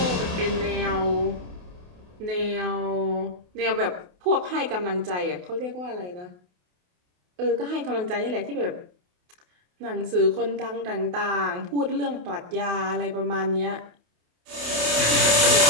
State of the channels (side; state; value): left; late; 28 ms